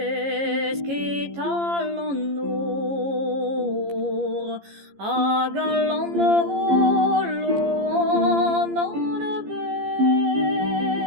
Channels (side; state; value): left; late; 15 ms